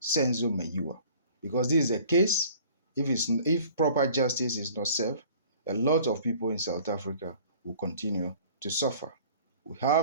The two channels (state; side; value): inverted; both; correlation -0.50